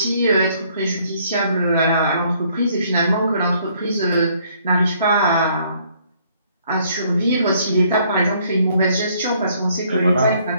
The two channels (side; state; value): both; inverted; correlation -0.65